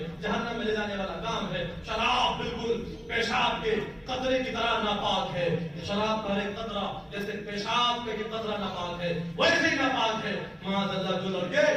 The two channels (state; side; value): identical; both; correlation 1.00